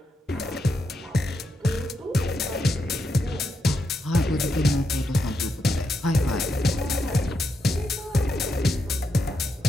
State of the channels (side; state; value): both; normal; correlation 0.83